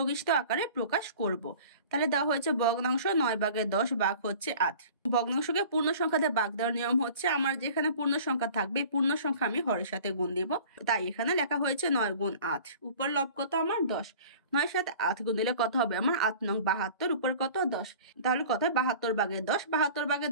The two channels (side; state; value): both; inverted; correlation -0.44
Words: আকারে প্রকাশ করব। তাহলে দেওয়া হয়েছে ভগ্নাংশ 9 ভাগের 10 ভাগ হচ্ছে 8। ভগ্নাংশকে পূর্ণ সংখ্যা দিয়ে ভাগ দেওয়ার নিয়ম হচ্ছে আমার যেখানে পূর্ণ সংখ্যা থাকবে পূর্ণ সংখ্যা আমি হরের সাথে গুণ দিব। তাই এখানে লেখা হয়েছে 9 গুণ 8, উপর লব কত আমার? 10। 9 সাথে 8 গুণ দিলে কত হবে আমার? 8 নং 72, উপর কত? 10। তাহলে কত হয়? 72 ভাগের 10। 72 ভাগের